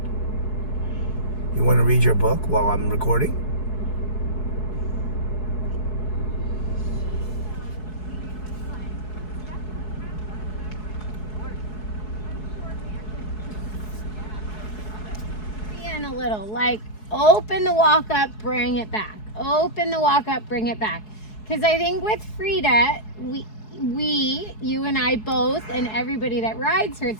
You want to read your book while I'm recording? A little, like open the walk up, bring it back. Open the walk up, bring it back. Because I think with Frida, you and I both, and everybody that rides her,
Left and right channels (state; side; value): late; right; 4.7 ms